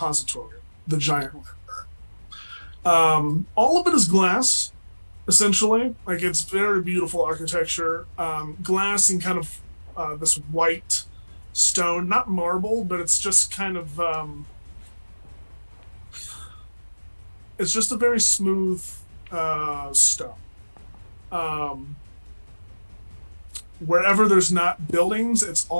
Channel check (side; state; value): both; inverted; correlation -1.00